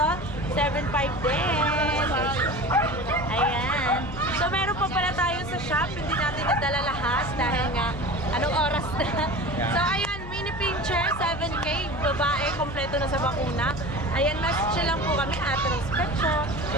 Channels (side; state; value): left; noise; hum, 12 dB below the sound